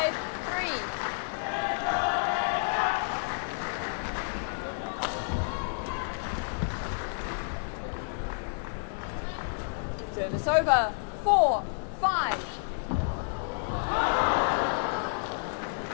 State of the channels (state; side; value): silent; right; digital silence